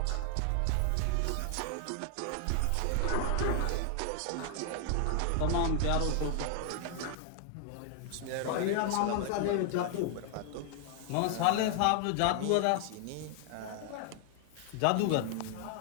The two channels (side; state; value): both; different; correlation 0.00